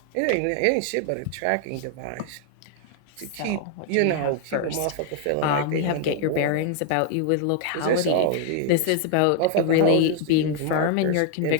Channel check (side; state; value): both; different; correlation 0.00